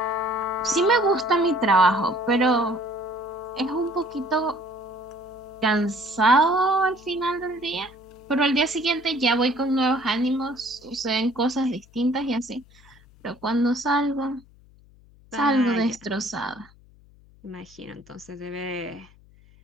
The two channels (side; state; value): left; noise; hum, 26 dB below the sound